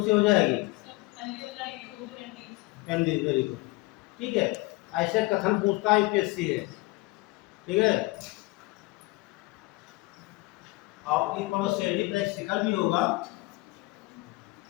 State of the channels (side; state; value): right; quieter; 22.1 dB